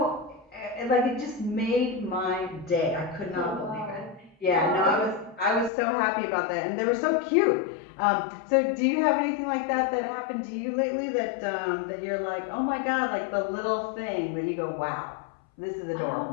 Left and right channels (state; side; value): drops out; right; at 5.7 s